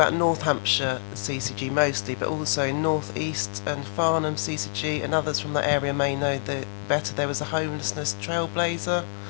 North Hampshire CCG mostly, but also in North East and Farnham CCG, and others from that area may know that better. There was a homelessness trailblazer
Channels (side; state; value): right; silent; 60 dB below the other